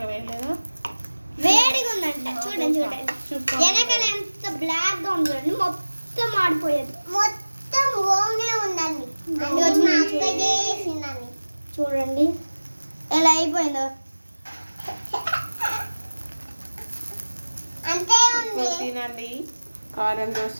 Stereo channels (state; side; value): inverted; both; correlation -1.00